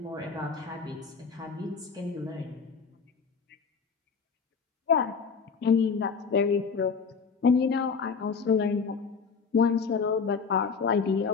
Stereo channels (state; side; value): quieter; right; 5.5 dB